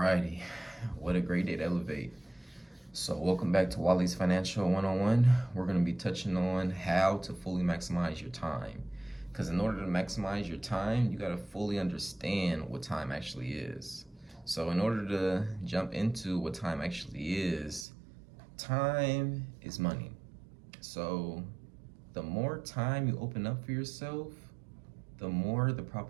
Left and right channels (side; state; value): left; drops out; at 17.9 s